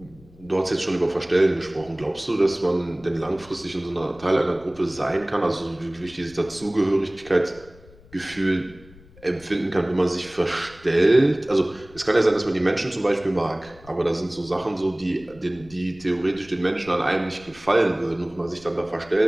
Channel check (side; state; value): left; noise; rumble, 23 dB below the sound